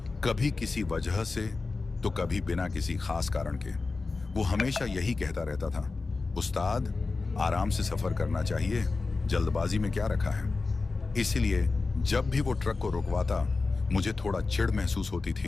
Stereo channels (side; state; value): right; quieter; 3.9 dB